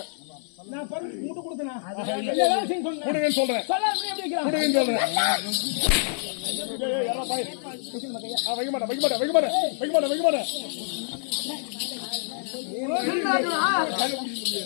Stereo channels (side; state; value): right; silent; 61 dB below the other